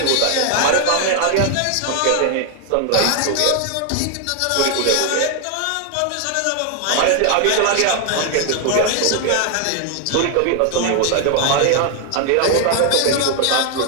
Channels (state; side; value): different; both; correlation 0.00